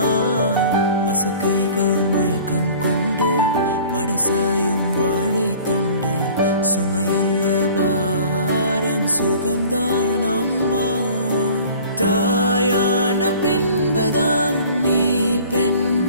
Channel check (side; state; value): both; inverted; correlation -0.47